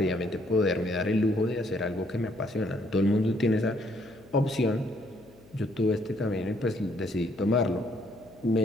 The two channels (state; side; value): noise; left; hum, 25 dB below the sound